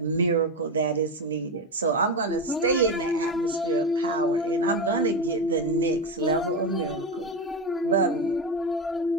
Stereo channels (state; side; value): normal; both; correlation 0.15